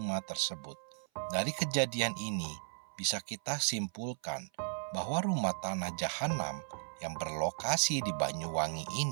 tersebut. Dari kejadian ini, bisa kita simpulkan bahwa rumah tanah jahanam yang berlokasi di Banyuwangi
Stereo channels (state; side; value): silent; left; 54 dB below the other